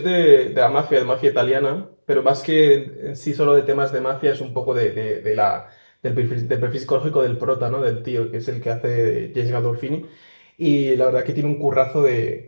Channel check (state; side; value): inverted; both; correlation -1.00